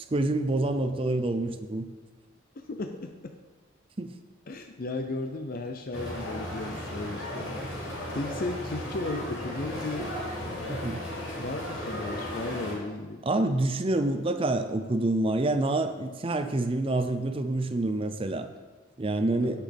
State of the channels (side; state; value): both; normal; correlation 0.62